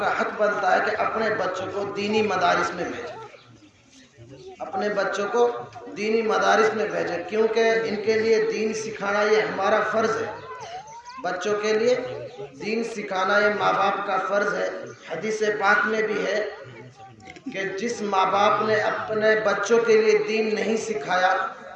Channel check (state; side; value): identical; both; correlation 1.00